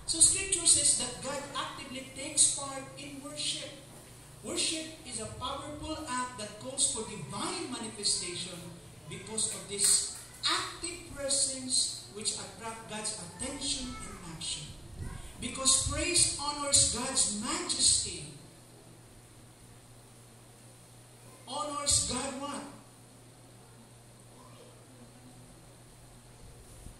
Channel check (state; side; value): normal; both; correlation 0.96